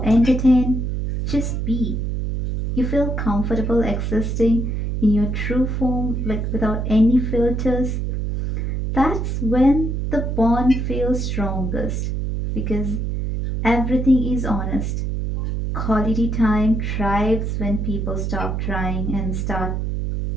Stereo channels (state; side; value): noise; right; hum, 1 dB below the sound